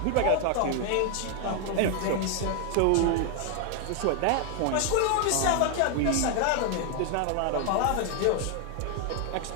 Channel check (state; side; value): different; both; correlation 0.00